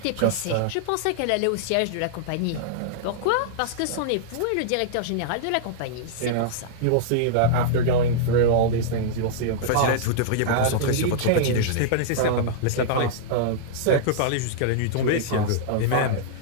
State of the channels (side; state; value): both; different; correlation -0.02